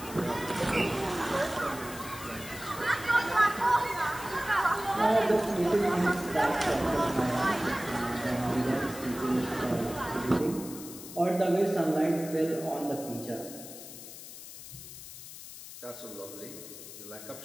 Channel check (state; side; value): noise; left; hiss, 13 dB below the sound